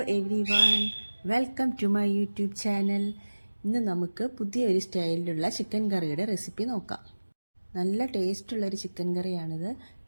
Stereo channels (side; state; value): both; inverted; correlation -1.00